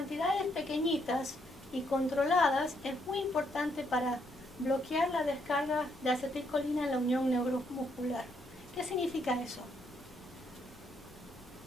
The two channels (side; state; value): both; normal; correlation 0.74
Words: pequeñitas y controladas es muy importante para bloquear la descarga de acetilcolina en la unión neuromuscular. ¿Qué significa eso?